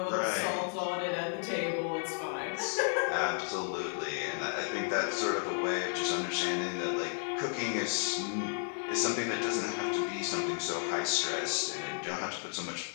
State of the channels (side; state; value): right; silent; 56 dB below the other